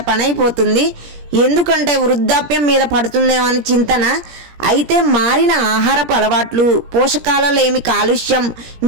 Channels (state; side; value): late; left; 17 ms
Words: పని అయిపోతుంది. ఎందుకంటే వృద్ధాప్యం మీద పడుతుందేమని చింతన. అయితే మారిన ఆహారపు అలవాట్లు, పోషకాలలేమి కాలుష్యం,